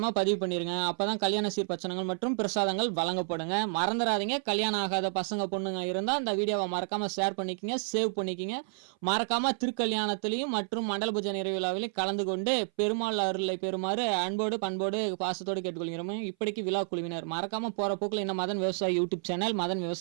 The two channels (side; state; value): left; silent; 58 dB below the other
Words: பதிவு பண்ணிருங்க. அப்பதான் கல்யாண சீர்பச்சனங்கள் மற்றும் பிரசாதங்கள் வழங்கப்படுங்க. மறந்துடாதீங்க. கல்யாணம் ஆகாத பசங்க பொண்ணுங்க இருந்தா இந்த வீடியோவை மறக்காம ஷேர் பண்ணிக்கங்க, சேவ் பண்ணிக்கங்க. மறக்காம திருக்கல்யாணத்திலையும் மற்றும் மண்டல பூஜை நிறைவு விழாவிலையும் கலந்து கொண்டு பெருமாள் அருளை பெறுமாறு அன்போடு பண்போடு பாசத்தோடு கேட்டுக்கொள்கிறோம். இப்படிக்கு விழா குழுவினர் மறக்காம போற போக்குல இந்த மதன் விவசாயி யூடியூப் சேனல், மதன்